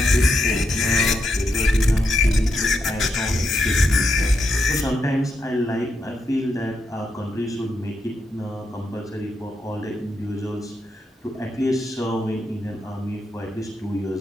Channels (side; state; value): both; normal; correlation 0.82